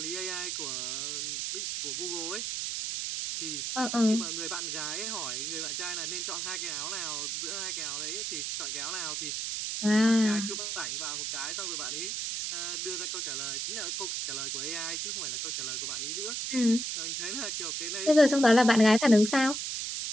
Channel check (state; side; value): noise; right; hiss, 2 dB below the sound